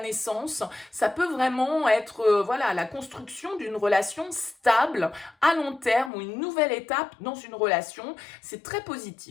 Ça peut vraiment être la construction d'une relation stable à long terme ou une nouvelle étape dans une relation. C'est très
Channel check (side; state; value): right; drops out; at 6.1 s